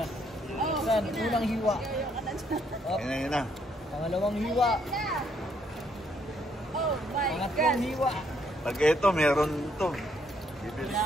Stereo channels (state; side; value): normal; both; correlation 0.71